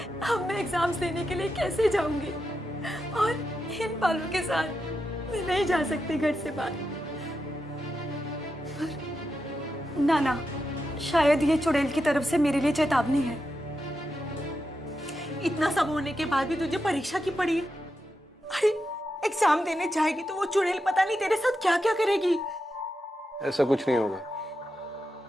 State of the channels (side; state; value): both; normal; correlation 0.87